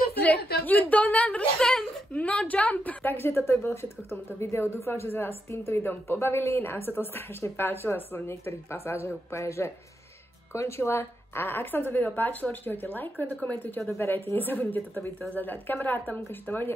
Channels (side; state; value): both; normal; correlation 0.83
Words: you don't understand, no jump. Takže toto bolo všetko k tomuto videu. Dúfam, že sa vás s týmto videom pobavili. Nám sa to strašne páčilo, som v niektorých pasážach úplne, že končila. A ak sa vám to video páčilo, určite hoďte like, komentujte, odoberajte, nezabudnite toto video zadať kamarátom, ukážte to